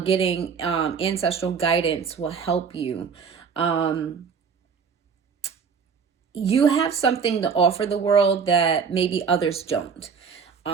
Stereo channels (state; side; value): quieter; left; 6.1 dB